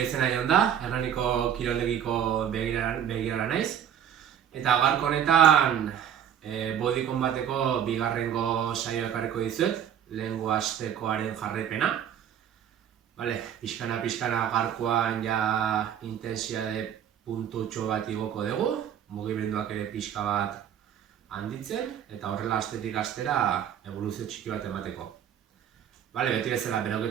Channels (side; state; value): left; quieter; 9.5 dB